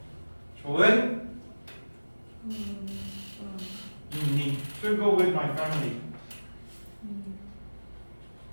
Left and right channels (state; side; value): inverted; both; correlation -1.00